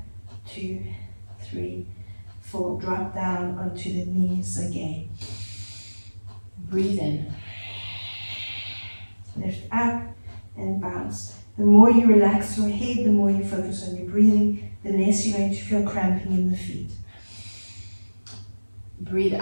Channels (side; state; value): both; inverted; correlation -1.00